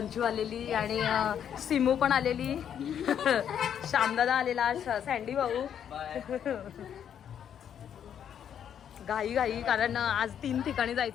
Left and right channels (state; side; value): quieter; right; 9.0 dB